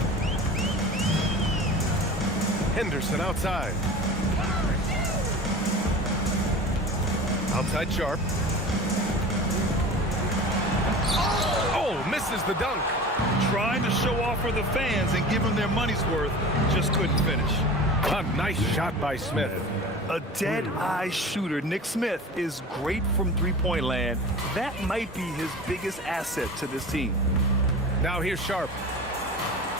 Henderson outside. Outside Sharp. Oh, misses the dunk. Trying to show off for the fans and give them their money's worth, just couldn't finish. A nice shot by Smith. A dead-eye shooter. Nick Smith is great from three-point land. That might be his biggest asset to this team. Now here's Sharp.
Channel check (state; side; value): normal; both; correlation 0.36